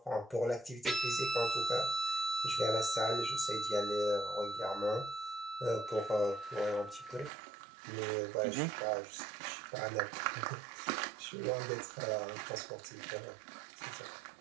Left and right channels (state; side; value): drops out; left; at 7.3 s